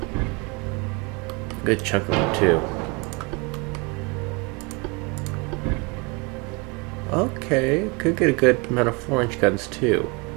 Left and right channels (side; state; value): left; quieter; 29.4 dB